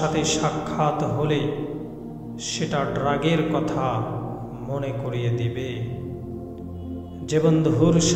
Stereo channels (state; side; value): identical; both; correlation 1.00